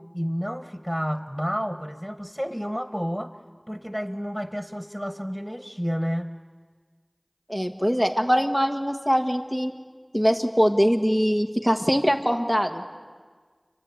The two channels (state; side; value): identical; both; correlation 1.00